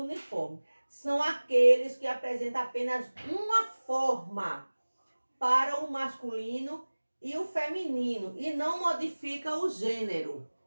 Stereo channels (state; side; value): inverted; both; correlation -1.00